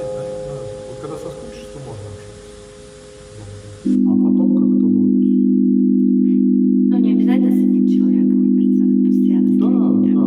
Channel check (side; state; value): both; identical; correlation 1.00